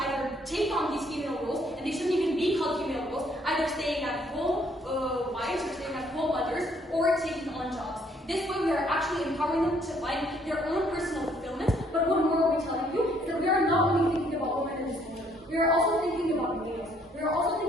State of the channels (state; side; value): normal; both; correlation 0.65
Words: take on these female roles, and they shouldn't even be called female roles, either staying at home wives or staying at home mothers, or taking on jobs. This way, we are actually empowering them to find their own personal fulfillment. But what more are we telling you is that we are not only thinking about women in this moment. We are also thinking about males. We are also